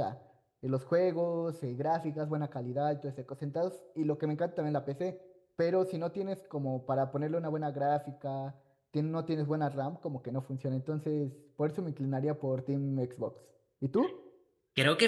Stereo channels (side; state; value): both; identical; correlation 1.00